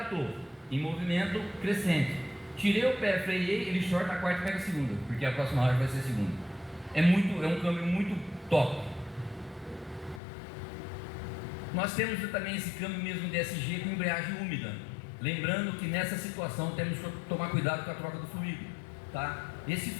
em movimento crescente. Tirei o pé, freiei, ele shorta a quarta e pega a segunda, porque a próxima hora vai ser a segunda. É um câmbio muito top. Nós temos também esse câmbio mesmo DSG com embreagem úmida. Lembrando que nessa situação temos que tomar cuidado com a troca do fluido, tá? Esse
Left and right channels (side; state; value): right; drops out; at 10.2 s